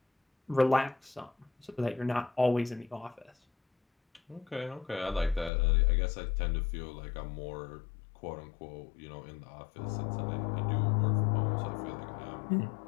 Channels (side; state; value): right; drops out; at 5.5 s